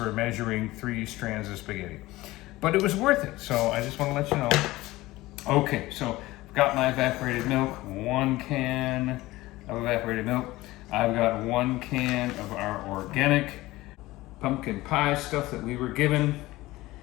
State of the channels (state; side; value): quieter; right; 18.5 dB